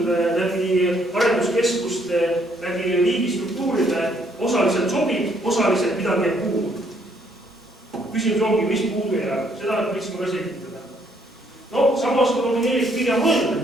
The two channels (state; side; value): normal; both; correlation 0.68